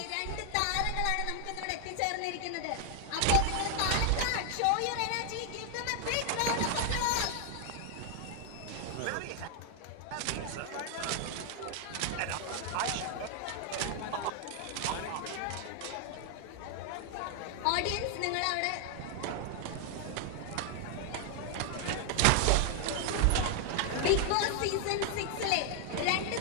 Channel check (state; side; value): different; both; correlation 0.00